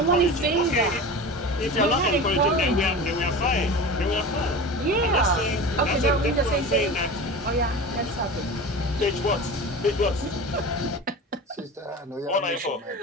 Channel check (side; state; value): both; normal; correlation 0.31